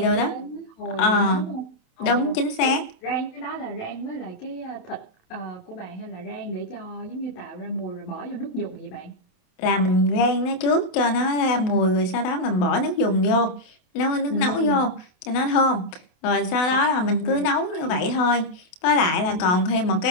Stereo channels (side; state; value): right; late; 27 ms